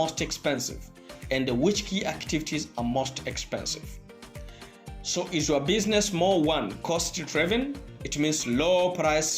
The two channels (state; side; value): identical; both; correlation 1.00